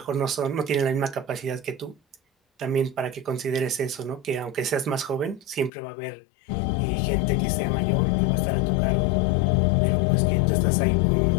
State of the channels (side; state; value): right; drops out; at 5.7 s